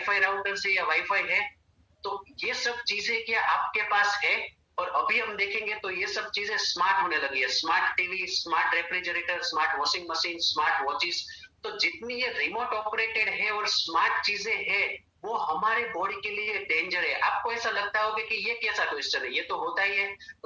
राउटर से या वाईफाई है? तो ये सब चीजें क्या आपके पास है? और अभी हम देखेंगे तो ये सब चीजें स्मार्ट होने लगी है। Smart TV, smart refrigerator, smart washing machine, smart watches. तो जितनी ये रिमोट ऑपरेटेड है और स्मार्ट चीजें हैं वो हमारे बॉडी के लिए डेंजर है। आपको ऐसा लगता होगा कि ये कैसा क्वेश्चन है, ये तो होता ही है।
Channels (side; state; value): both; identical; correlation 1.00